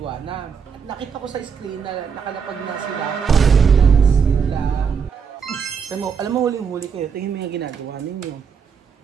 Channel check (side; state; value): left; quieter; 6.4 dB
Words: Nakita ko sa screen na nakalapag na sila. Alam mo, huling-huli kayo, tingin mo yung ginagawa ninyo.